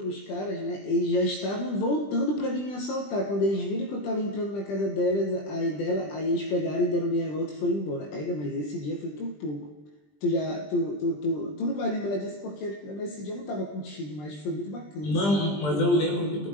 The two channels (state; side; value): late; right; 20 ms